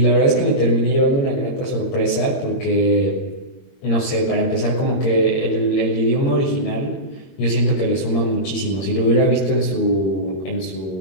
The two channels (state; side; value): late; right; 22 ms